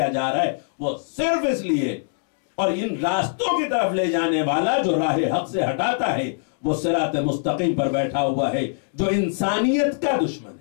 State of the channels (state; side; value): silent; right; digital silence